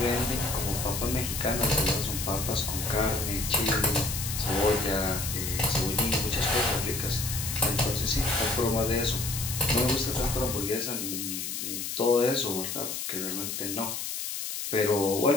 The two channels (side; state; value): left; noise; hiss, 4 dB below the sound